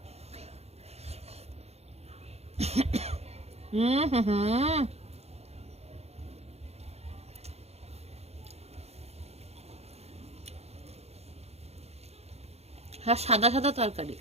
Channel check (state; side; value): late; left; 0.30 ms